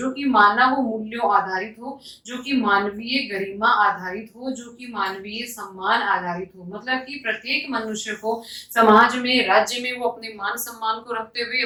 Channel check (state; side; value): identical; both; correlation 1.00